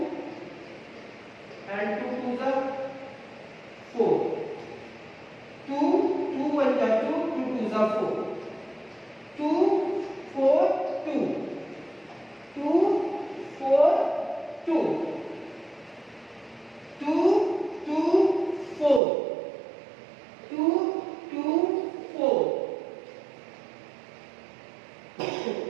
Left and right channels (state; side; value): drops out; left; at 19.0 s